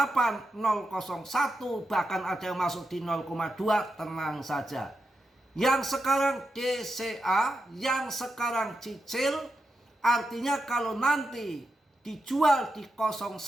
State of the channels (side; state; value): both; normal; correlation 0.87